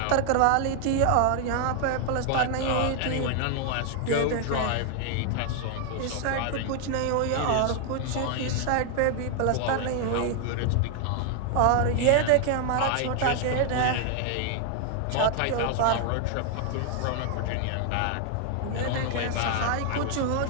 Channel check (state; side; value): different; both; correlation 0.00